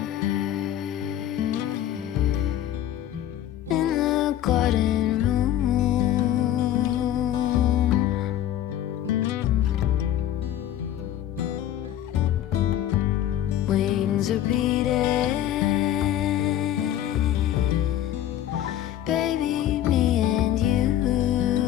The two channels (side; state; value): right; quieter; 11.8 dB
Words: in the garden room. Wings are beating, baby, me and you.